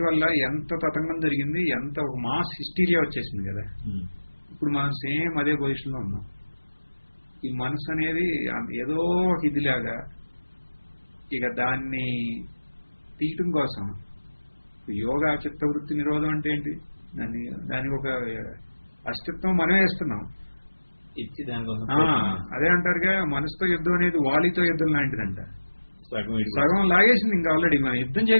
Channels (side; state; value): both; inverted; correlation -1.00